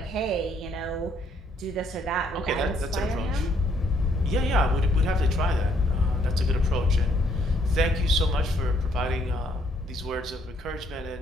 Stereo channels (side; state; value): both; normal; correlation 0.68